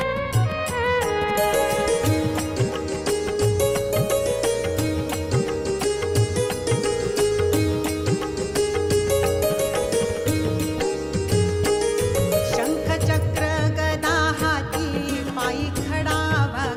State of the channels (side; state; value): both; identical; correlation 1.00